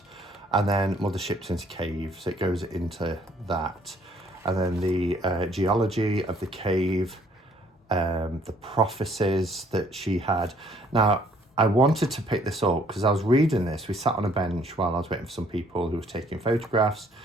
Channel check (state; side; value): normal; both; correlation 0.62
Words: And then Mother Shipton's cave, so it goes into that. And then the geology of the cave, the prophecies that she had. Now, I wanted to pick this up because I was reading this. We sat on a bench while I was waiting for some people who were taking photographs